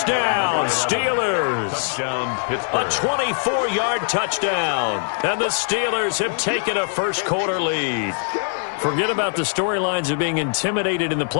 Steelers. Touchdown, Pittsburgh. A 24-yard touchdown. And the Steelers have taken a first-quarter lead. Forget about the storylines of being intimidated in the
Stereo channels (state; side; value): silent; right; 64 dB below the other